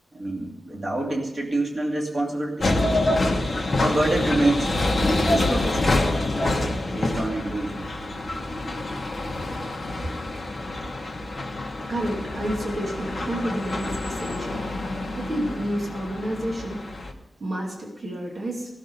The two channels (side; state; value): both; normal; correlation 0.91